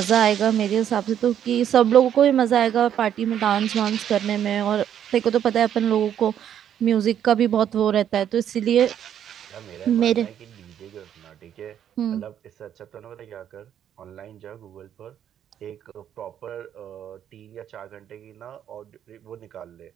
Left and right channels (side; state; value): left; quieter; 9.8 dB